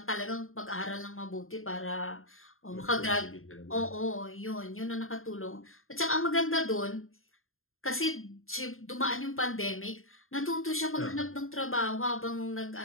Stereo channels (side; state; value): right; late; 0.61 ms